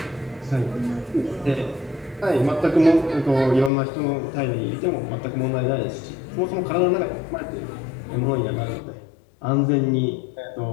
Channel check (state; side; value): drops out; right; at 3.7 s